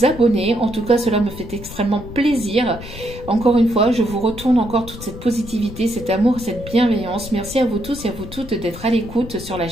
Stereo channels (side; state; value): left; noise; rumble, 13 dB below the sound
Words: abonner. En tout cas, cela me fait extrêmement plaisir. Encore une fois, je vous retourne encore toute cette positivité, cet amour, cette bienveillance. Merci à vous tous et à vous toutes d'être à l'écoute sur la